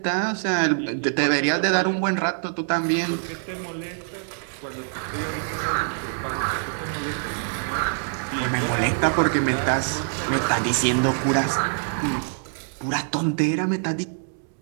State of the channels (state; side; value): silent; left; digital silence